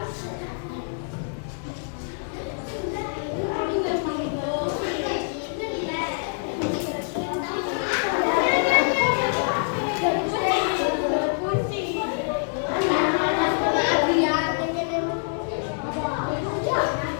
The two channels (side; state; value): right; silent; 61 dB below the other